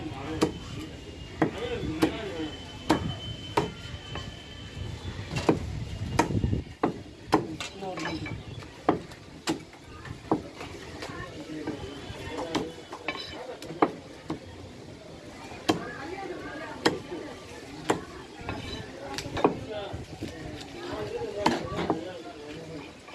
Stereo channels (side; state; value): both; identical; correlation 1.00